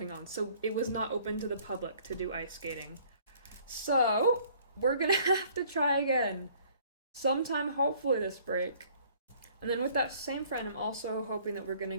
on, so it was not open to the public to do ice skating. So, we're gonna have to try again sometime, hopefully, this break. And then with that same friend, I'm also hoping that we're gonna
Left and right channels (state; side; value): inverted; both; correlation -0.57